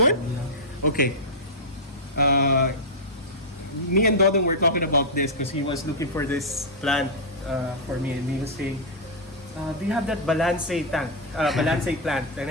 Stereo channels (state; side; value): normal; both; correlation -0.07